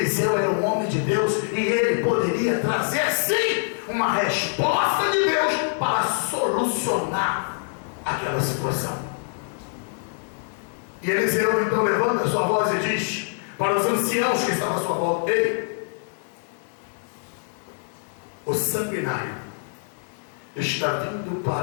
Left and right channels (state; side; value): silent; right; 61 dB below the other